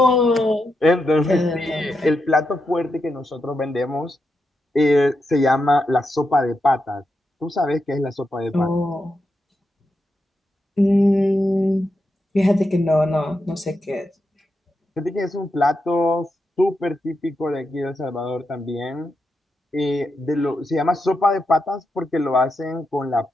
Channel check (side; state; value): both; normal; correlation 0.86